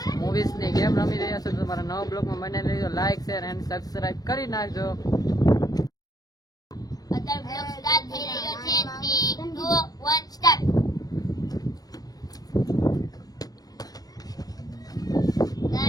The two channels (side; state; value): right; late; 0.18 ms